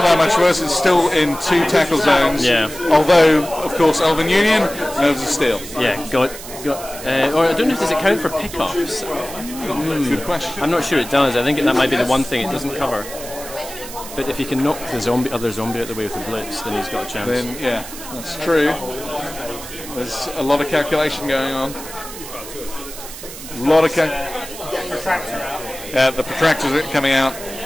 that much worse. It's still in 2 tackle zones. Yeah. Although, of course, Elven Union knows a steal. Yeah, or I don't know if does it count for pickups. Good question. I'm not sure it does. I think that might be the one thing it doesn't cover. But if he can knock the other zombie out the way with the blitz, then he's got a chance. Then yeah, that's true. There's a lot of calculation going on. A lot of the protractors are coming out.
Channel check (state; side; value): noise; right; hiss, 13 dB below the sound